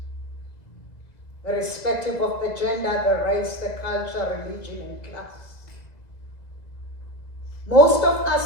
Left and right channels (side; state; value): right; late; 1.9 ms